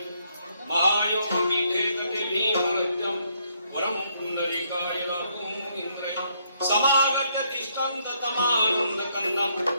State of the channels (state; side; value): inverted; both; correlation -0.72